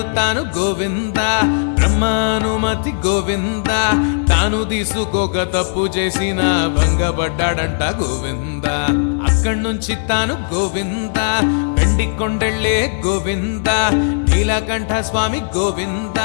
తాను గోవింద బ్రహ్మానుమతి గోవింద తాను తీసుకోక తప్పు చేసిన భంగపడ్డాడంట గోవింద అక్కడి నుంచి తాను గోవింద వెండి కొండెళ్ళే గోవింద నీలకంఠ స్వామి గోవింద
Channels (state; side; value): silent; right; digital silence